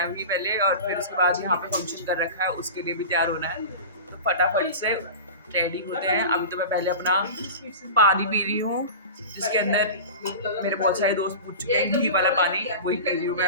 अभी पहले और फिर उसके बाद यहाँ पे फंक्शन कर रखा है उसके लिए भी तैयार होना है. तो फटाफट से रेडी होते हैं. अभी तो मैं पहले अपना पानी पी रही हूँ जिसके अंदर मेरे बहुत सारे दोस्त पूछ चुके हैं. घी वाला पानी वही पी रही हूँ मैं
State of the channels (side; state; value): both; inverted; correlation -0.31